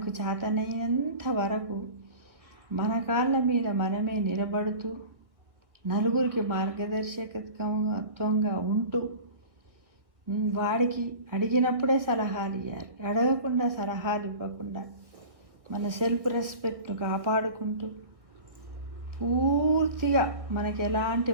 చేతనైనంత వరకు మన కాళ్ళ మీద మనమే నిలబడుతూ నలుగురికి మార్గదర్శకత్వంగా ఉంటూ వాడికి అడిగినప్పుడే సలహాలు ఇవ్వాలి. అడగకుండా సలహాలు ఇవ్వకుండా మన సెల్ఫ్ రెస్పెక్ట్ను కాపాడుకుంటూ పూర్తిగా మనకి ఎలాంటి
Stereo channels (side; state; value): left; late; 1.5 ms